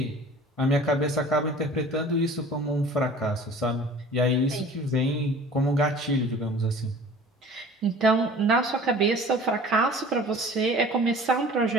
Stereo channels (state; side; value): normal; both; correlation 0.45